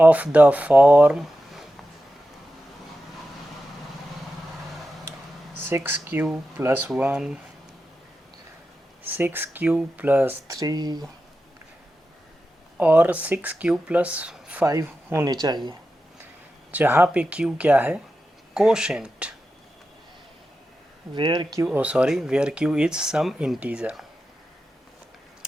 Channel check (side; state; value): both; normal; correlation 0.91